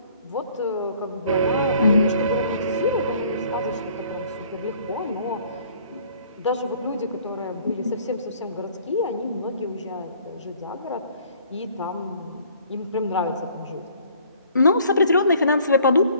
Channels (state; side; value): inverted; both; correlation -0.57